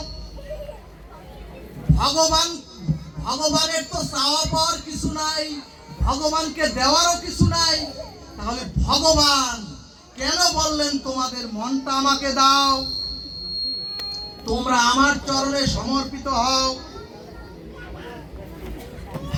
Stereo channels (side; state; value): both; identical; correlation 1.00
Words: ভগবানের তো চাওয়া পাওয়ার কিছু নাই, ভগবানকে দেওয়ারও কিছু নাই। তাহলে ভগবান কেন বললেন তোমাদের মনটা আমাকে দাও, তোমরা আমার চরণে সমর্পিত হও?